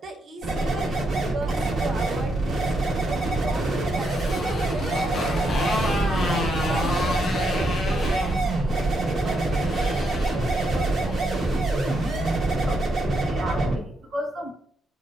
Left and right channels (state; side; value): normal; both; correlation 0.80